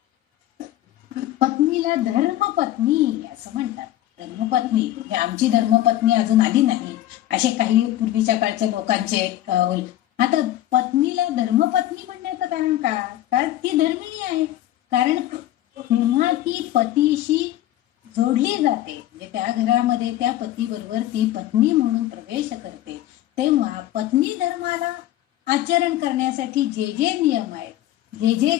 पत्नीला धर्मपत्नी असं म्हणतात. धर्मपत्नी म्हणजे आमची धर्मपत्नी अजून आली नाही असे काही पूर्वीच्या काळच्या लोकांचे आता पत्नीला धर्मपत्नी म्हणण्याचं कारण का? कारण ती धर्मिणी आहे. कारण जेव्हा ती पतीशी जोडली जाते, म्हणजे त्या घरामध्ये त्या पतीबरोबर ती पत्नी म्हणून प्रवेश करते, तेव्हा पत्नी धर्माला आचरण करण्यासाठी जे जे नियम आहेत, जे जे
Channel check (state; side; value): quieter; right; 13.8 dB